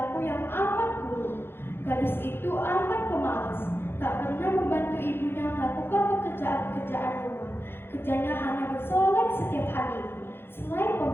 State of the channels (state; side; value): late; right; 0.11 ms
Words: yang amat buruk. Gadis itu amat pemalas, tak pernah membantu ibunya melakukan pekerjaan-pekerjaan rumah. Kerjanya hanya bersolek setiap hari. Selain